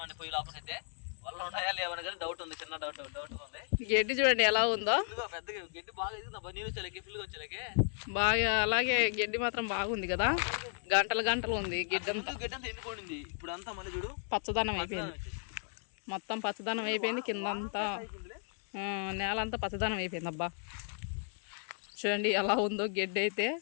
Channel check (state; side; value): silent; right; 55 dB below the other